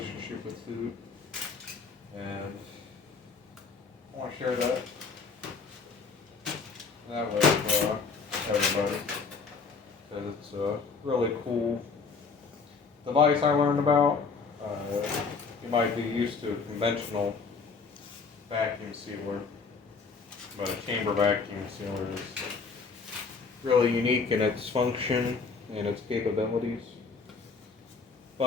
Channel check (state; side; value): quieter; right; 4.9 dB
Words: with food. And I want to share that with everybody because it's a really cool device I learned about. You might be used to a conventional vacuum sealer, But a chamber vacuum sealer is really unique in its function and its capabilities.